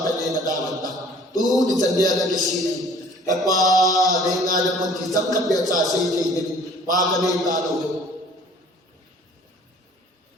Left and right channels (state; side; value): normal; both; correlation 0.52